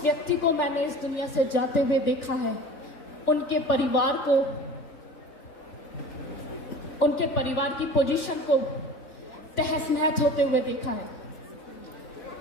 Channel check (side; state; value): right; late; 3.5 ms